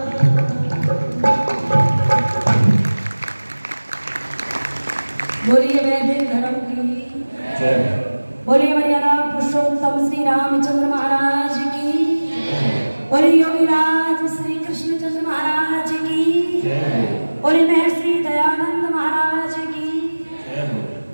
बोलिए वैदिक धर्म की जय। बोलिए मर्यादा पुरुषोत्तम श्री रामचंद्र महाराज की। बोलिए योगीराज श्री कृष्णचंद्र महाराज की। बोले महर्षि दयानंद महाराज की।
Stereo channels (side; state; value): both; inverted; correlation -1.00